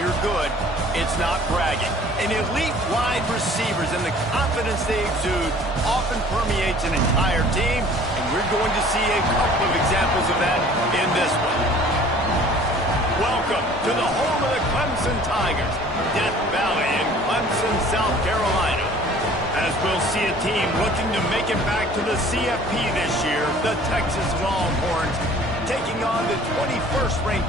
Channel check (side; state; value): both; normal; correlation 0.50